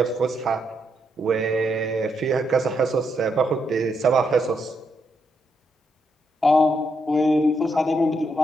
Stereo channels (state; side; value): normal; both; correlation 0.79